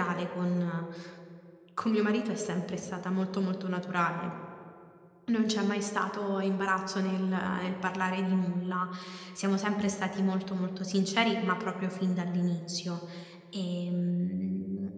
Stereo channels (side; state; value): both; identical; correlation 1.00